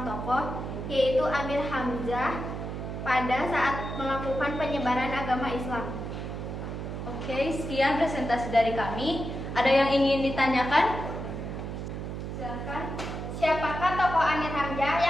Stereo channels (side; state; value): right; noise; hum, 6 dB below the sound